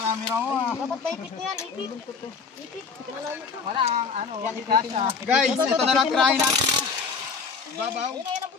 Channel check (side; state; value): right; quieter; 5.1 dB